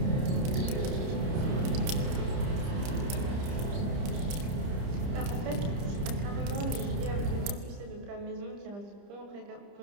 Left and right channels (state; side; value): late; left; 30 ms